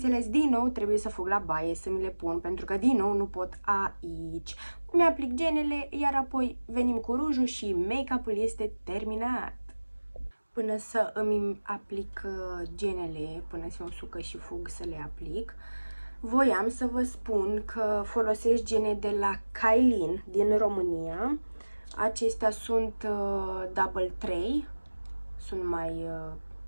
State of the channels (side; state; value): both; inverted; correlation -1.00